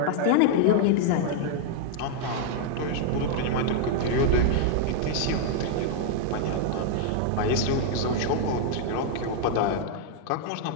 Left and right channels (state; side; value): different; both; correlation 0.00